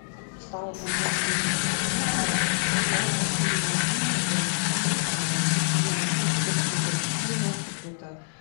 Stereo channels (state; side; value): silent; right; digital silence